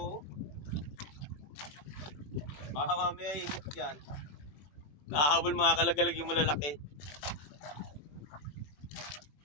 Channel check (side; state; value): right; late; 21 ms